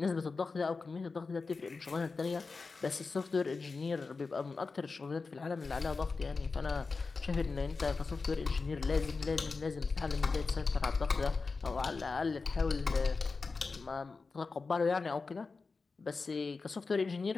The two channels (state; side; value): quieter; right; 4.3 dB